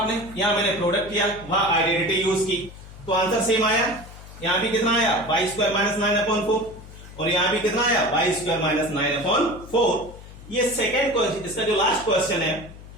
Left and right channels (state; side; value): noise; left; hum, 17 dB below the sound